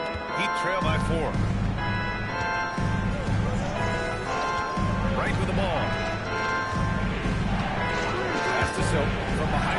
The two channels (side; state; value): both; identical; correlation 1.00